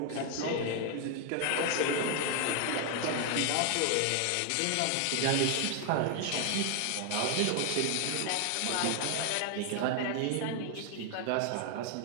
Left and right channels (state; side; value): different; both; correlation 0.00